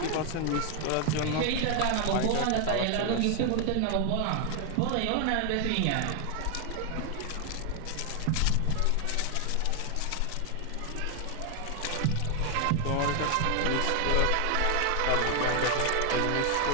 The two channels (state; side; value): different; both; correlation 0.01